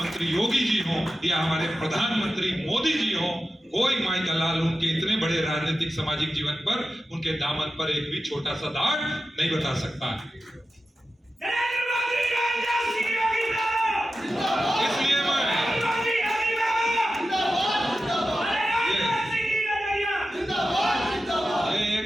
योगी जी हो या हमारे प्रधानमंत्री मोदी जी हो, कोई माई का लाल उनके इतने बड़े राजनीतिक सामाजिक जीवन पर, उनके दामन पर एक भी छोटा सा दाग नहीं बता सकता। इसलिए मैं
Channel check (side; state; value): both; normal; correlation 0.92